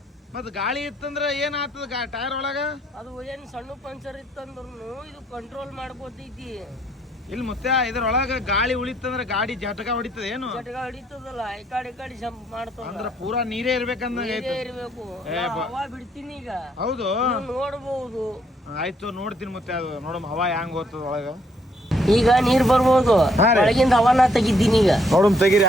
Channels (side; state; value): both; normal; correlation 0.69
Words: ಮತ್ ಗಾಳಿ ಇತ್ತಂದ್ರ ಏನ್ ಆತದ ಟೈರ್ ಒಳಗ? ಅದು ಏನ್ ಸಣ್ಣ ಪಂಚರ್ ಇತ್ತಂದ್ರೂ ಇದು ಕಂಟ್ರೋಲ್ ಮಾಡ್ಕೋತೈತಿ. ಇಲ್ಲಿ ಮತ್ತೆ ಇದ್ರೊಳಗ ಗಾಳಿ ಉಳಿತಂದ್ರ ಗಾಡಿ ಜಟಕ ಹೊಡಿತದ ಏನು? ಜಟಕ ಹಿಡಿತದಲ್ಲ, ಈ ಕಡೆ ಜಂಪ್ ಮಾಡ್ತದ. ಅಂದ್ರ ಪೂರಾ ನೀರೇ ಇರ್ಬೇಕಂದಂಗ ನೀರೇ ಆಯ್ತು. ಇರ್ಬೇಕು. ಏ ನಾ ಬಾ. ಹವಾ ಬಿಡ್ತೀನಿ ಈಗ, ಹೌದು ನೀವು ನೋಡ್ಬೋದು. ಆಯ್ತು ನೋಡ್ತೀನಿ ಮತ್ತೆ ಅದು ನೋಡಮ್ ಹವಾ ಹೆಂಗ್ ಹೋಗ್ತದ ಒಳಗ. ಈಗ ನೀರ್ ಬರ್ಬೋದು, ಹಾ ರೀ. ಒಳಗಿಂದ ಹವಾನ ತೆಗಿದ್ದೀನಿ ಈಗ. ನೋಡಮ್ ತೆಗೀರಿ